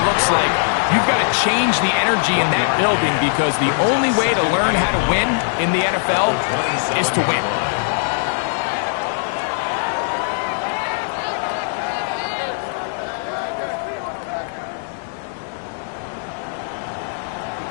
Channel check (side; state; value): right; silent; digital silence